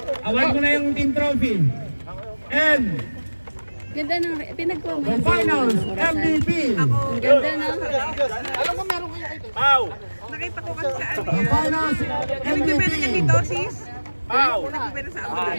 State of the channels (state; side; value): inverted; both; correlation -1.00